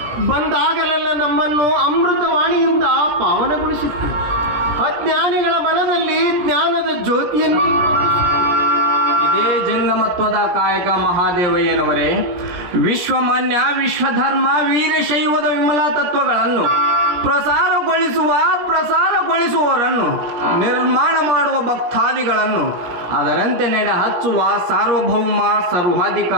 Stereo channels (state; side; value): late; left; 17 ms